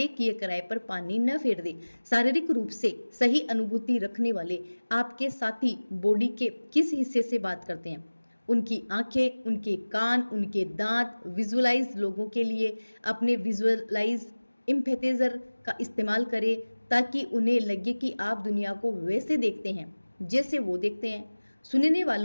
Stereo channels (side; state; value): both; inverted; correlation -1.00